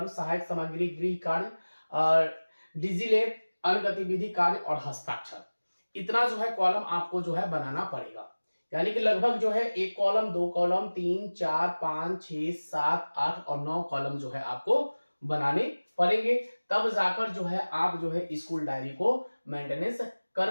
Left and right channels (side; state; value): both; inverted; correlation -1.00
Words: सहायक सामग्री, गृह कार्य, डिजिलेब, अन्य गतिविधि, कार्य और हस्ताक्षर। इतना जो है कॉलम आपको जो है बनाना पड़ेगा। यानी कि लगभग जो है एक कॉलम, दो कॉलम, 3, 4, 5, 6, 7, 8 और 9 कॉलम जो है आपको बनाने पड़ेंगे। तब जाकर जो है आप जो है स्कूल डायरी को मेंटेनेंस